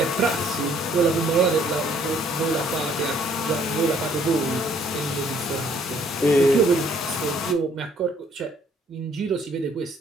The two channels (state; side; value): normal; both; correlation 0.63